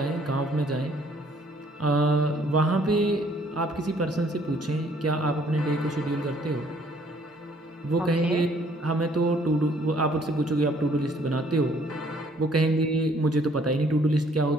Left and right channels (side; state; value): both; normal; correlation 0.62